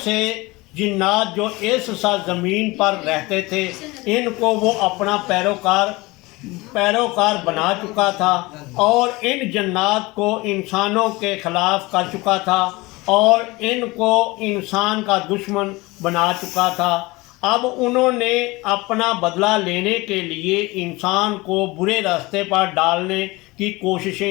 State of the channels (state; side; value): quieter; right; 22.4 dB